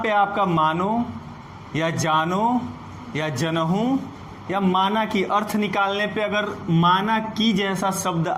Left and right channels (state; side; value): identical; both; correlation 1.00